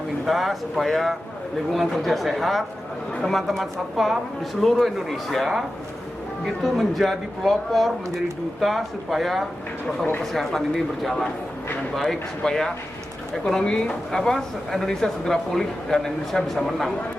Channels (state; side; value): normal; both; correlation 0.93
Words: kita supaya lingkungan kerja sehat, teman-teman satpam di seluruh Indonesia itu menjadi pelopor, menjadi duta supaya protokol kesehatan ini berjalan dengan baik supaya ekonomi Indonesia segera pulih dan Indonesia bisa menang.